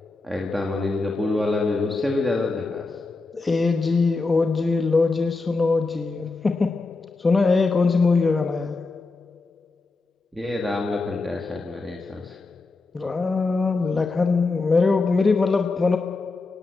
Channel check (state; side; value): quieter; right; 3.7 dB